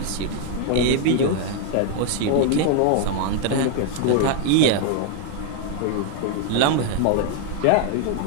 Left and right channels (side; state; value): both; different; correlation 0.00